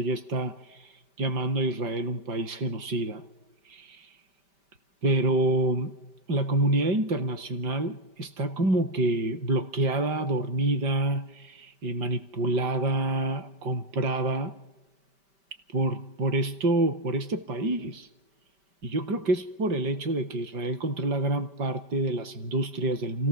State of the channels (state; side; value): late; left; 5.1 ms